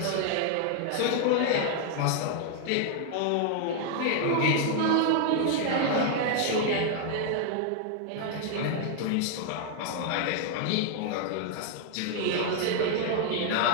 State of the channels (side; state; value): both; different; correlation 0.00